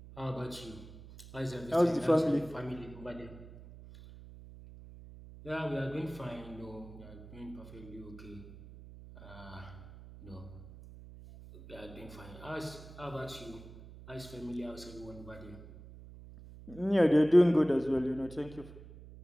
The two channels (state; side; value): noise; right; hum, 16 dB below the sound